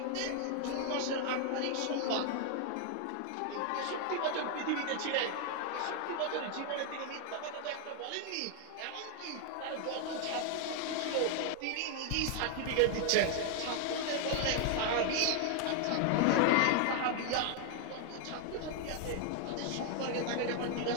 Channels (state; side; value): different; both; correlation 0.00